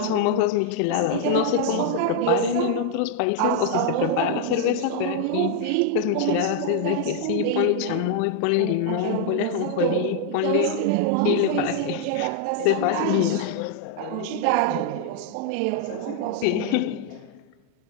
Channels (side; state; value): both; different; correlation 0.00